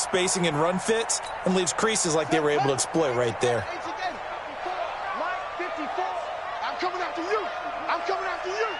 and run fits and leaves creases like they were able to exploit right there. I'm coming after you. I'm coming after you.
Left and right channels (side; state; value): both; identical; correlation 1.00